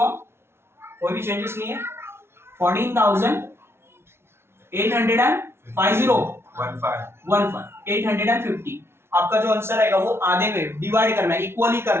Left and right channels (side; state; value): left; late; 0.12 ms